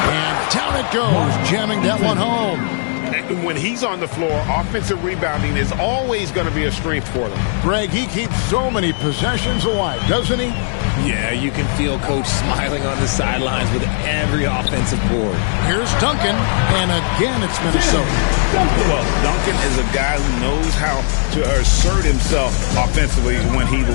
And down it goes, jamming that one home. And when he's on the floor, offensive rebounding is always going to be a strength for them. Greg, he keeps so many possessions alive, doesn't he? Yeah, you can feel Coach smiling on the sidelines with every offensive board. Here's Duncan, and again it's Minnesota. Well, Duncan is a guy who knows how to assert himself offensively. When he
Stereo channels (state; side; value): silent; right; 63 dB below the other